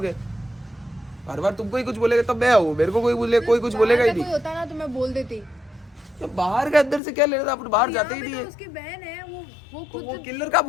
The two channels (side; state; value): right; drops out; at 7.0 s